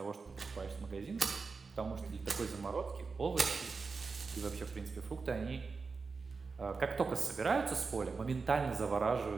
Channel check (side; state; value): left; quieter; 4.6 dB